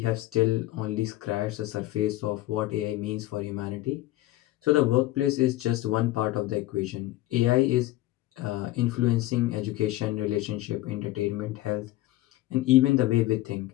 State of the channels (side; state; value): right; quieter; 16.5 dB